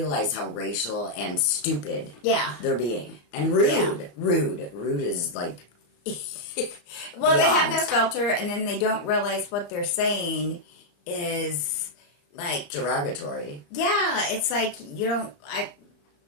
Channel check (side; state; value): right; late; 34 ms